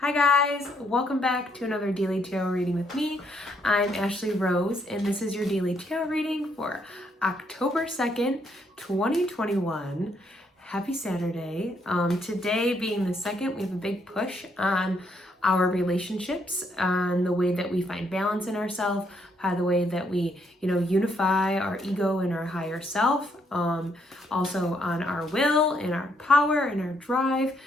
Hi guys, welcome back to another daily tarot reading with me. I'm Ashley Rose and this is your daily tarot reading for October 2nd, 2021. Happy Saturday. Today being the 2nd, we have a big push on our relationships, on the way that we find balance in ourselves, by the way that we, unify our ego and our higher self, also on our will and our power and our drive,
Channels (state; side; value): normal; both; correlation 0.73